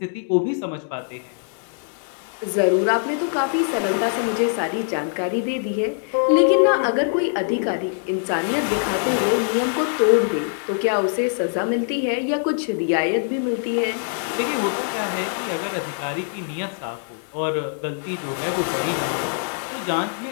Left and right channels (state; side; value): silent; right; digital silence